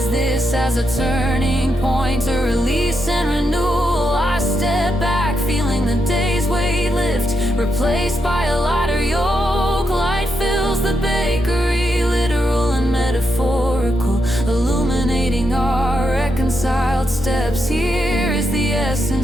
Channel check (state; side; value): normal; both; correlation 0.83